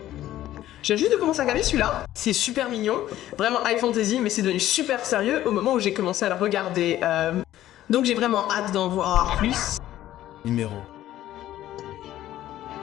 Je viens juste de commencer à regarder celui-là. C'est super mignon, vraiment high fantasy, mais c'est devenu super sérieux au moment où j'ai commencé à le regarder. Donc j'ai vraiment hâte d'en voir plus. Numéro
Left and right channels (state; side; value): quieter; right; 13.5 dB